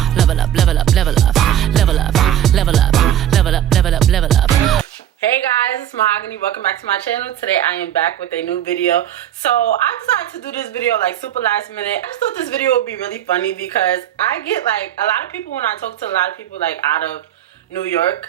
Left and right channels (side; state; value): left; quieter; 11.0 dB